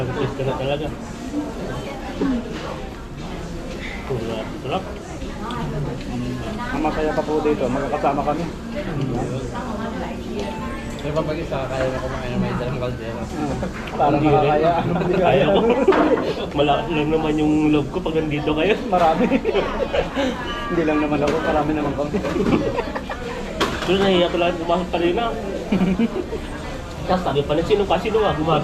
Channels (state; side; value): identical; both; correlation 1.00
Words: pwesto na talaga. Sarap. Ang masaya pa po dito, magkakasama kami. May pag isa, kaya na kumain na may dalang kaldero. Parang Hindi rin. makakaya. Kaya ko. Malakas lang naman yung love ko pag nandito kayo. Marami. Hindi lang naman ako, marami naman kami. Doon nahiya ko lang kumakit pa rin na. Tapos sabi pa na sino ba?